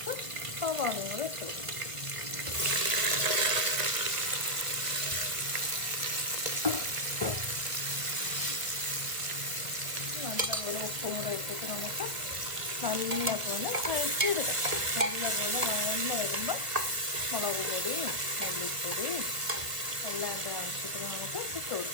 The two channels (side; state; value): left; late; 1.5 ms